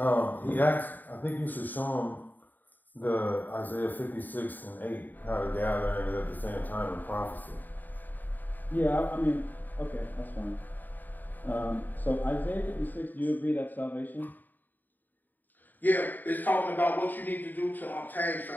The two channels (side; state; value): right; late; 0.087 ms